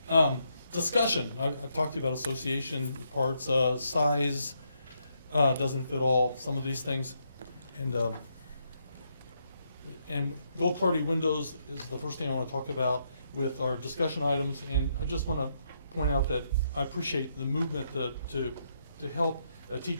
Discussion. I've talked to you about association parts, size, doesn't fit all, some of these things. And gold clarity windows is the first thing I want to talk about with our discussion items. And I just want to point out that I appreciate the movement to help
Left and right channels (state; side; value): inverted; both; correlation -0.78